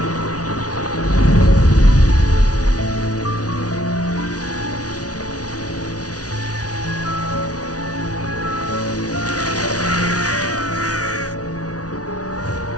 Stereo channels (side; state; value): right; late; 0.68 ms